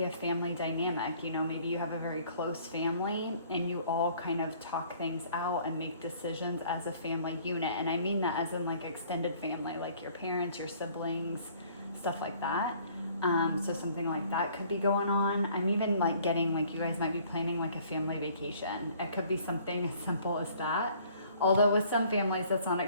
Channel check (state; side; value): inverted; both; correlation -0.57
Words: a family dynamic. You know, maybe you have a very close family and you all kind of talk things out and make decisions as a family unit. And I mean that as in like extended family, like your parents, your siblings, stuff like that. So something like that could be going on. I'm even like getting like you guys might be planning like a family vacation. It could be something as simple as that. Although with some families, that's not